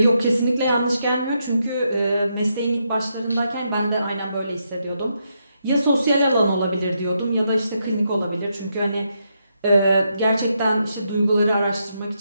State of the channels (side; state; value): both; inverted; correlation -0.81